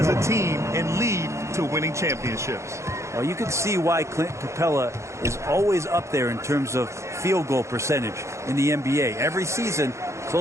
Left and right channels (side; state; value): left; late; 0.14 ms